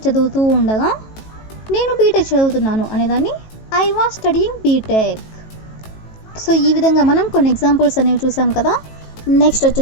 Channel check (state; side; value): late; right; 18 ms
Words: చదువుతూ ఉండగా నేను బీటెక్ చదువుతున్నాను అనేదాన్ని I was studying B Tech. So ఈ విధంగా మనం కొన్ని ఎగ్జాంపుల్స్ అనేవి చూసాం కదా. నెక్స్ట్